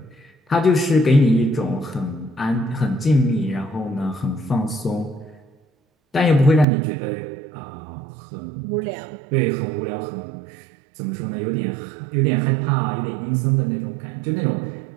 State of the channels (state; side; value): drops out; left; at 6.7 s